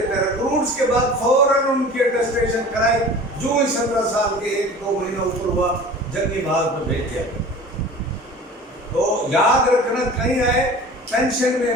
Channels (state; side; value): normal; both; correlation 0.40